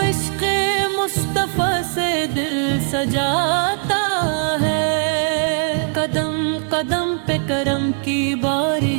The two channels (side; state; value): left; silent; 57 dB below the other